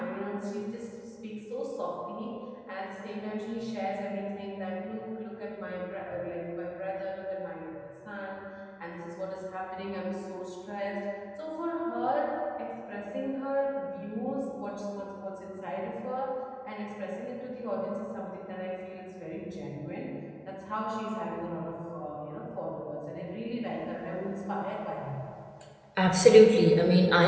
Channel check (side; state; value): both; identical; correlation 1.00